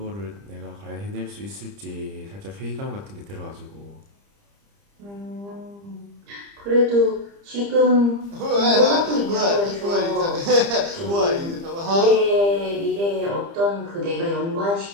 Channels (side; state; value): left; late; 30 ms